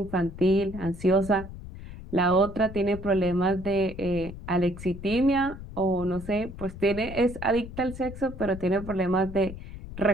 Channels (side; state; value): left; noise; rumble, 12 dB below the sound